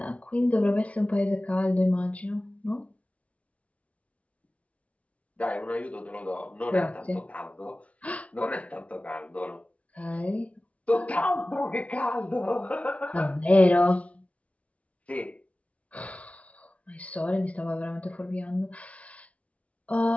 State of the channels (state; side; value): late; right; 0.066 ms